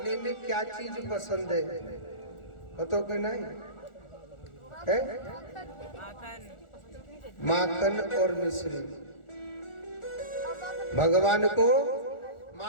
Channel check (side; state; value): right; late; 1.4 ms